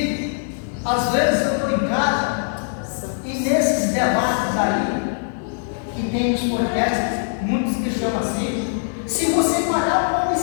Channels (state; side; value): silent; right; digital silence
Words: às vezes eu estou em casa, e nesses debates aí, que tem os podcasts, muitos que chamam assim, se você parar para